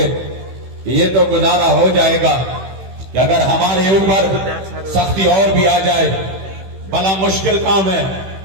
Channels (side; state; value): left; late; 16 ms